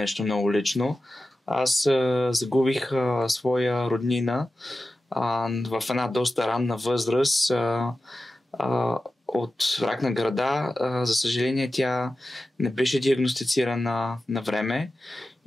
много лично. Аз загубих своя роднина в една доста ранна възраст от рак на гърда. За съжаление, тя не беше диагностицирана на време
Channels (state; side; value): normal; both; correlation 0.93